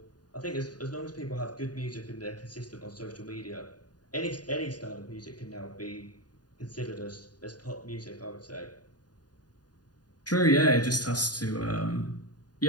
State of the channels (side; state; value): right; late; 0.69 ms